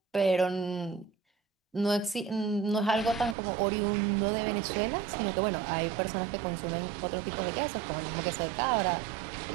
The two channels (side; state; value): left; drops out; at 3.4 s